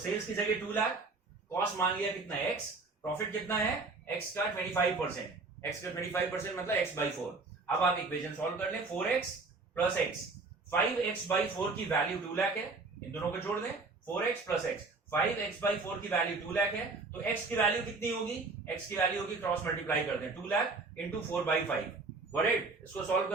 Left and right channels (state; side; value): quieter; left; 3.8 dB